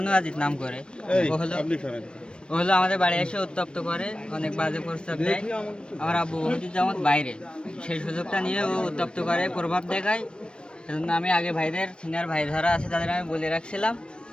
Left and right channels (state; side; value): late; right; 0.055 ms